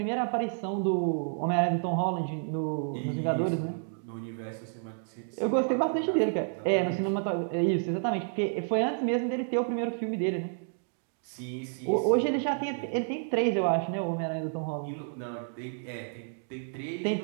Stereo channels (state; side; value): silent; left; digital silence